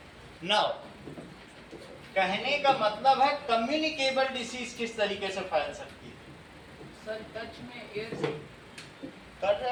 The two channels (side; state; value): both; identical; correlation 1.00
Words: नाउ कहने का मतलब है कम्युनिकेबल डिसीज किस तरीके से फैल सकती है। सर टच में एयर से कर